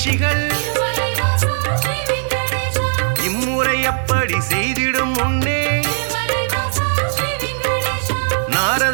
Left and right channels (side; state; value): left; silent; digital silence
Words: இம்முறை அப்படி செய்திடும் முன்னே